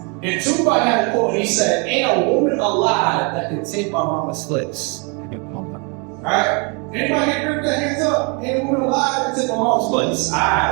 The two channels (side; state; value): left; quieter; 33.4 dB